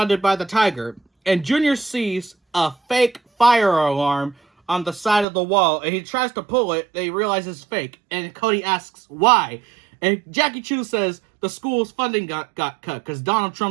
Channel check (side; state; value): left; drops out; at 5.2 s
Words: by the tiger. And Junior sees a fake fire alarm on the side of the wall, and he tries to pull it, and he realizes it's fake. And Cody asks why. And Jackie Chu says the school's funding got cut because Donald